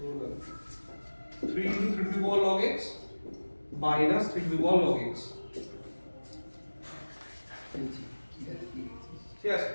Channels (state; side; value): inverted; both; correlation -1.00